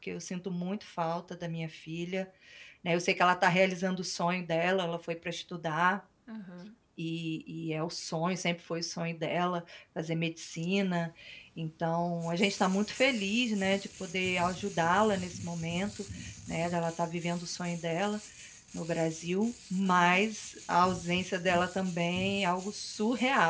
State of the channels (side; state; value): both; identical; correlation 1.00